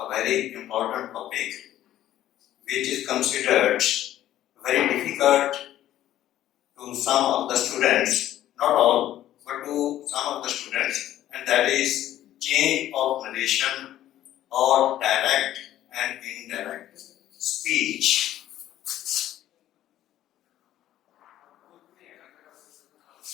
very important topic which is considered very difficult to some of the students, not all, but to some of the students, and that is change of narration or direct and indirect speech.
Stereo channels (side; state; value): right; quieter; 12.8 dB